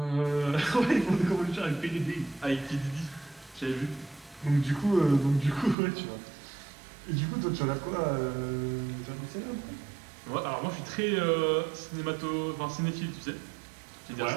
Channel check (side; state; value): left; drops out; at 5.8 s